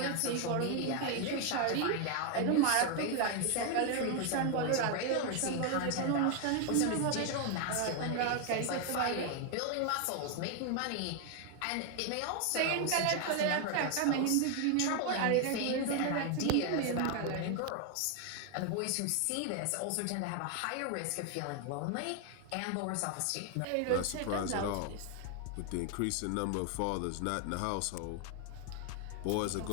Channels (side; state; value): both; different; correlation 0.01